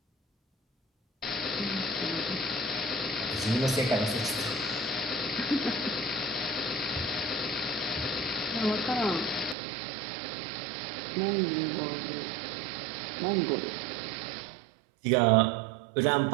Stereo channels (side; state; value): left; drops out; at 9.6 s